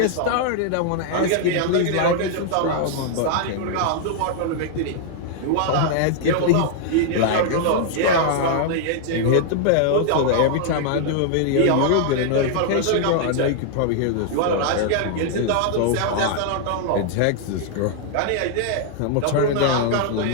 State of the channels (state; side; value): different; both; correlation -0.01